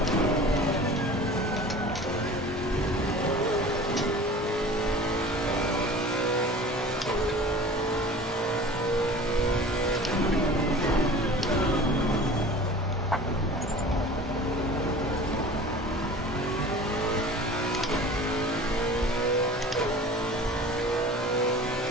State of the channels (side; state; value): both; normal; correlation 0.41